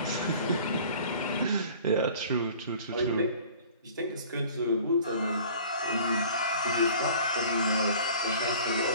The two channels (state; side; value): inverted; both; correlation -0.47